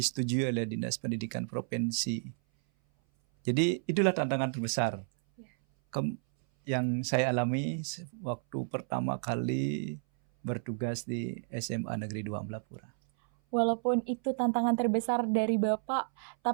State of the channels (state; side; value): silent; left; 57 dB below the other